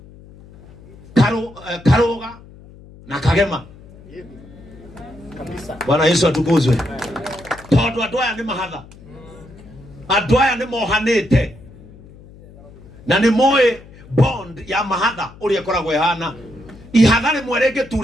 Karuga na Kagema kabisa. Bwana Yesu atukuzwe. Tondu andu aya ni mahatha, andu aya ni mohanite na ni moe bond ya mahatha uria koragwo ihana ihatha rimwe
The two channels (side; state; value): left; noise; hum, 21 dB below the sound